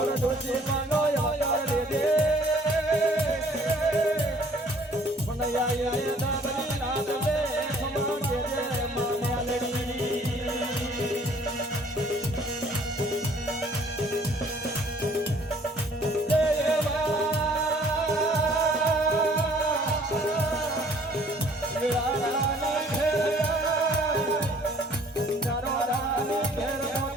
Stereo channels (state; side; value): normal; both; correlation 0.57